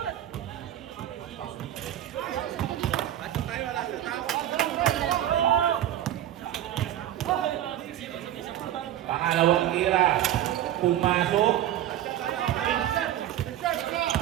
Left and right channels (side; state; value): left; quieter; 11.9 dB